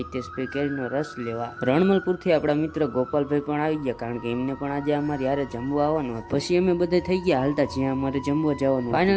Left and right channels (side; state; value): both; identical; correlation 1.00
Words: હિતેશભાઈ કેરીનો રસ લેવા. રણમલપુરથી આપણા મિત્ર ગોપાલભાઈ પણ આવી ગયા, કારણ કે એમને પણ આજે અમારી હારે જમવા આવવાનું હતું. પછી અમે બધા થઈ ગયા હાલતા જ્યાં અમારે જમવા જવાનું.